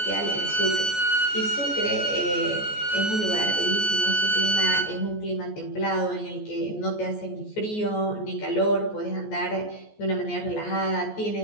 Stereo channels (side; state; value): right; late; 14 ms